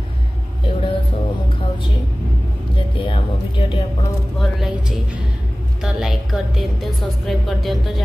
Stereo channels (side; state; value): both; normal; correlation 0.98